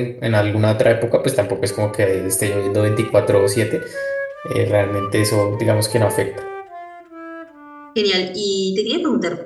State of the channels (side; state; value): both; identical; correlation 1.00